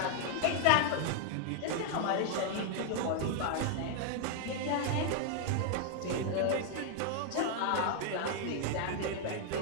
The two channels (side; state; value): both; different; correlation 0.00